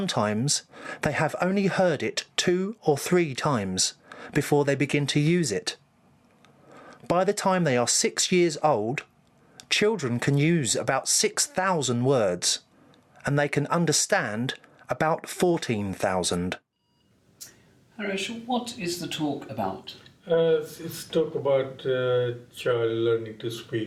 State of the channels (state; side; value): identical; both; correlation 1.00